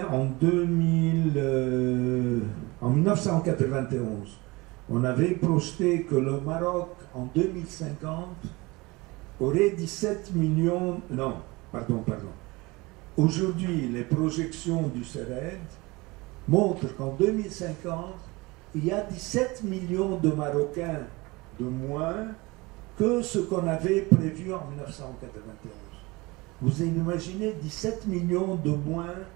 en 1991. On avait projeté que le Maroc, en 2050, aurait 17 millions... Non, pardon. Aujourd'hui, les projections du CERED montrent qu'en 2050, il y a 17 millions de Marocains de moins que ce qu'on avait prévu en 1991. Vous imaginez 17 millions de moins,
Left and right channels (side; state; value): left; quieter; 23.4 dB